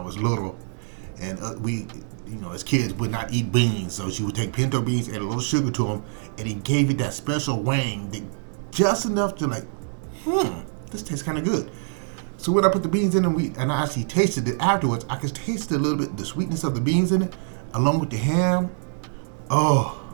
was little, and we, as kids, would not eat beans, so she would take pinto beans, add a little sugar to them, and it gave it that special wang, just enough to this tastes kind of good. So when I put the beans in and I actually tasted it afterwards, I could taste a little bit the sweetness of the beans in it, along with the ham. Oh,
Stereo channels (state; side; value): silent; left; 62 dB below the other